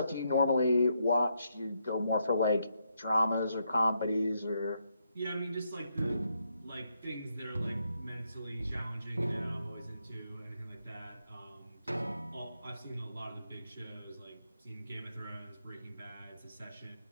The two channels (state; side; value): inverted; both; correlation -0.78